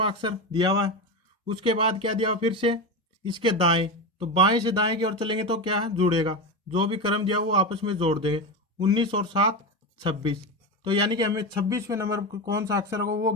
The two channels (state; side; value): normal; both; correlation 0.18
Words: अक्षर दिया हुआ है। उसके बाद क्या दिया हुआ, फिर से इसके दाएं, तो बाएं से दाएं की ओर चलेंगे तो क्या है, जुड़ेगा, जो भी क्रम दिया वो आपस में जोड़ देंगे, 19 और 7 26। तो यानी कि हमें 26वें नंबर पर कौन सा अक्षर होगा वो